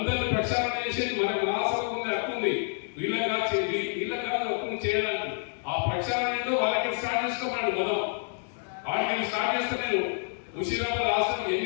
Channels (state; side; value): silent; right; 58 dB below the other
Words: ప్రక్షాళన చేసేది మనకు మహాసభ ఉంది, హక్కు ఉంది. వీళ్ళకి కాదు హక్కుని చేయడానికి. ఆ ప్రక్షాళన ఏంటో వాళ్ళకి స్టార్ట్ చేసుకోమండి. మొదలు వాటికి వాటిని స్టార్ట్ చేస్తే నేను ముషీరాబాద్ హాస్టల్